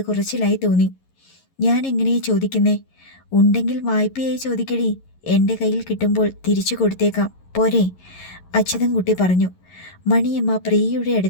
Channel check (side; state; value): right; late; 11 ms